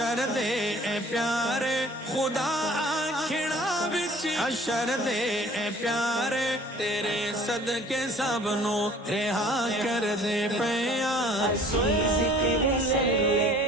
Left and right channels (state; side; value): normal; both; correlation 0.51